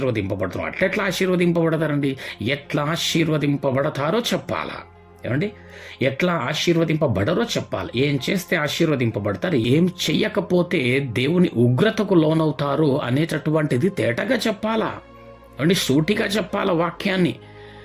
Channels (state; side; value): identical; both; correlation 1.00